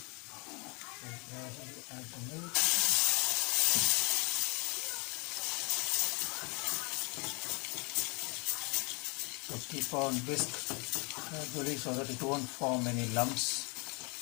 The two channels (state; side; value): quieter; right; 31.7 dB